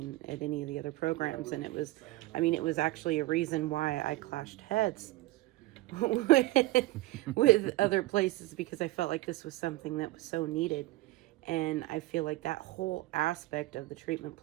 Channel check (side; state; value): left; quieter; 18.9 dB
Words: at any of the other programs. And it was actually a reason why I clashed heads with other places, because I felt like this was something that was so needed. And I feel like that whole aspect of the treatment